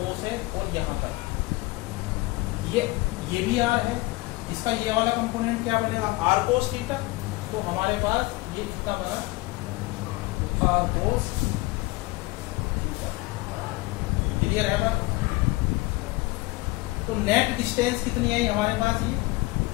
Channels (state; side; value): quieter; right; 21.7 dB